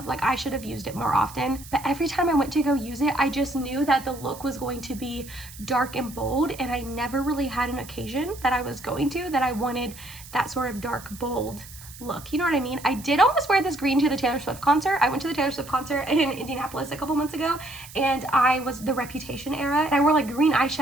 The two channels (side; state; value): right; noise; hiss, 17 dB below the sound